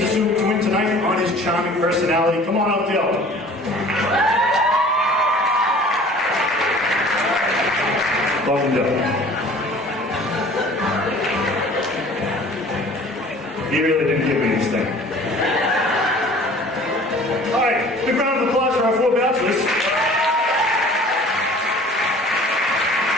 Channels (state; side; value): normal; both; correlation 0.48